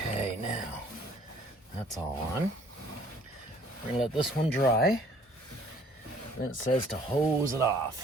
now, that's all on. We're going to let this one dry. Then it says to hose it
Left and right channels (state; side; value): normal; both; correlation 0.57